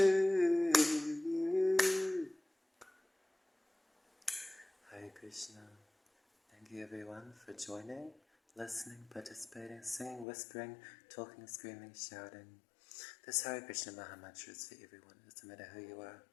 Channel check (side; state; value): right; drops out; at 10.2 s